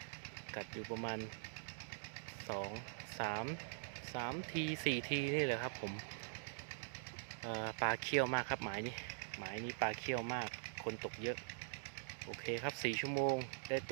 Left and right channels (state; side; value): silent; left; digital silence